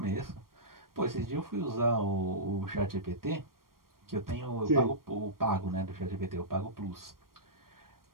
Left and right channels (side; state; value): left; late; 0.92 ms